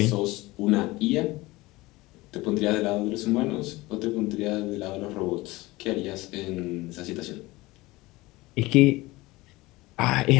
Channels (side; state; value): right; quieter; 20.5 dB